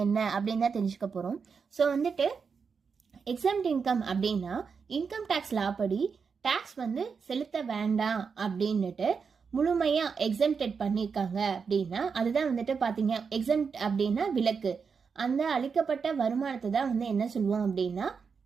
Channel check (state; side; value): quieter; left; 5.7 dB